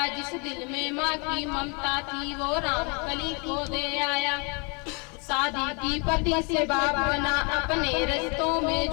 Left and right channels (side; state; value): right; quieter; 33.8 dB